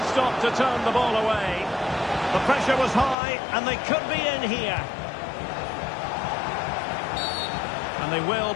stop to turn the ball away. The pressure was high, and they could be in here. And they will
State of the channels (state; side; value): drops out; right; at 3.2 s